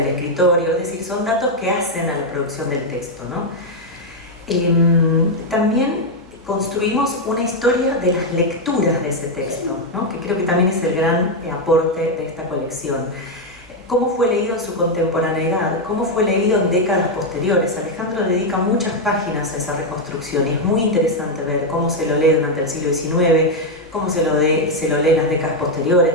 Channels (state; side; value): noise; right; hum, 26 dB below the sound